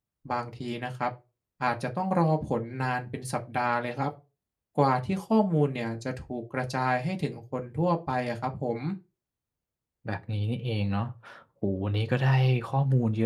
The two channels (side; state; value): both; identical; correlation 1.00